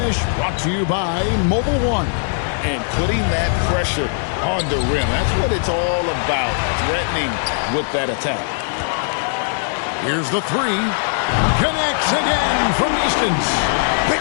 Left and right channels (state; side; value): silent; right; digital silence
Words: brought to you by Mobile One. And putting that pressure on the rim. That's what it's all about, threatening with that attack. Here's the three. Connects again from distance.